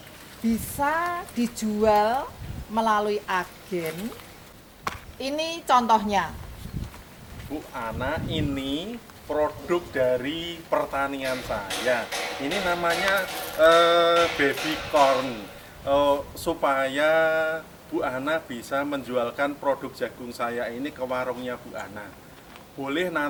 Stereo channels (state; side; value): identical; both; correlation 1.00